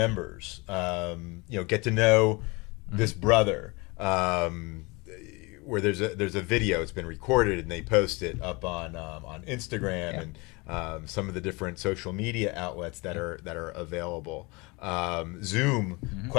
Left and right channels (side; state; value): right; quieter; 26.4 dB